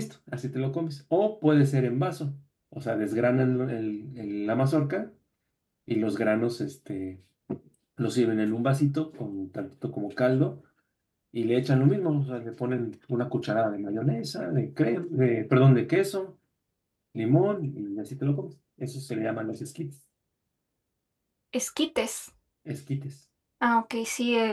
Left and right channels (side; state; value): both; identical; correlation 1.00